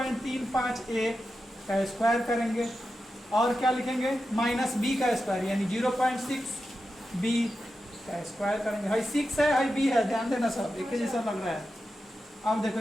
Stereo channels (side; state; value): both; normal; correlation 0.90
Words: a का स्क्वायर करेंगे और क्या लिखेंगे माइनस b का स्क्वायर यानी 0.6 b का स्क्वायर करेंगे। हाई 6 है हाई b है, ध्यान देना सब एक ही जैसा लग रहा है। अब